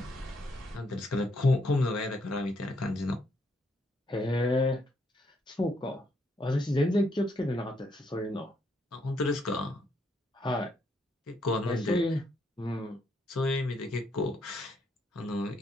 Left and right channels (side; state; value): both; normal; correlation 0.74